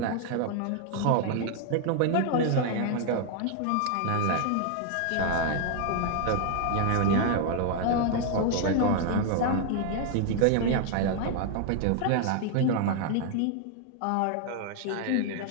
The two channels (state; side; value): different; both; correlation 0.00